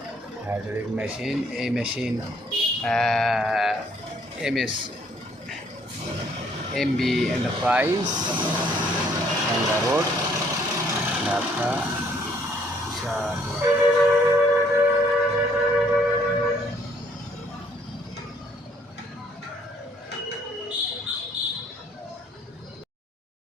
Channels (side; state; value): both; normal; correlation 0.64